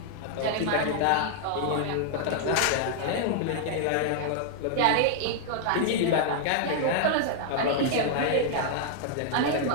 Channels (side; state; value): both; different; correlation -0.01